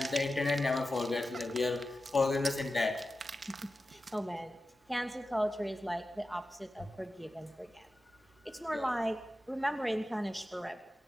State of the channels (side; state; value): both; normal; correlation 0.92